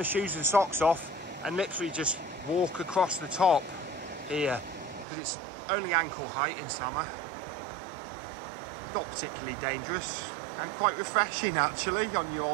shoes and socks off and literally just walk across the top here, because it's only ankle height in summer. Not particularly dangerous and quite refreshing actually on your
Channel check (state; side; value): drops out; left; at 5.1 s